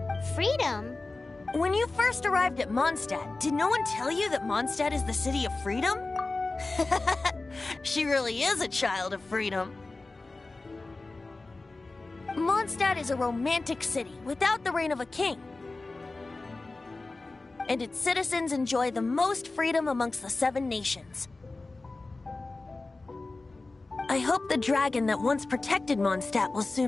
Freedom? When you first arrived at Mondstadt, did no one tell you that Mondstadt is the city of freedom? She really is a child of freedom. Mondstadt is a romantic city without the reign of a king. And its citizens enjoy the most freedom amongst the 7 nations. I hope the dragon that once protected Mondstadt will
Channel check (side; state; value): right; quieter; 3.4 dB